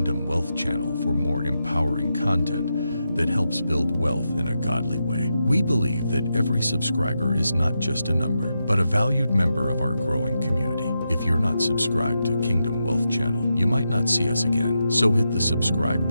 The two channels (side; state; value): both; inverted; correlation -0.87